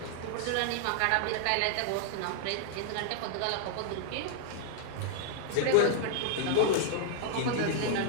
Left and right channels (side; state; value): both; different; correlation -0.01